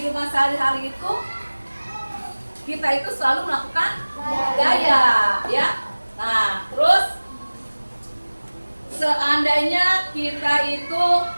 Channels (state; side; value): inverted; both; correlation -1.00